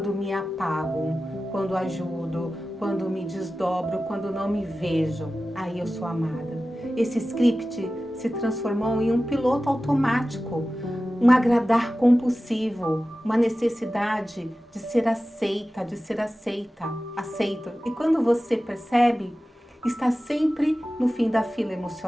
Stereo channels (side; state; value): both; normal; correlation 0.95